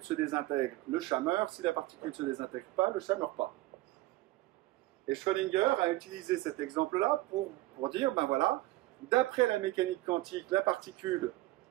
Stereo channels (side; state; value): left; quieter; 18.0 dB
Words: se désintègre, le chat meurt. Si la particule ne se désintègre pas, le chat ne meurt pas. Et Schrödinger a utilisé cet exemple-là pour dire, ben voilà, d'après la mécanique quantique, la particule,